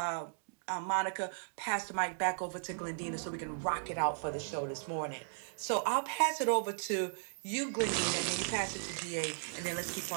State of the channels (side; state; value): left; silent; digital silence